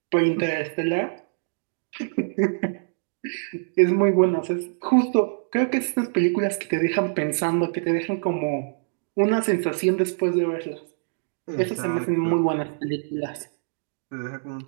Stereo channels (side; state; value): left; silent; digital silence